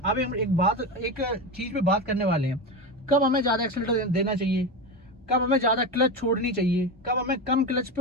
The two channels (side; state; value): both; normal; correlation 0.19